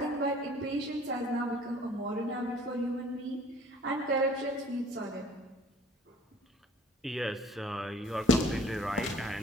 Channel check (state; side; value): normal; both; correlation 0.52